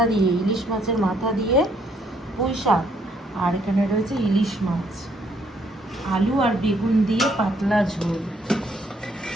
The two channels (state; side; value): normal; both; correlation 0.68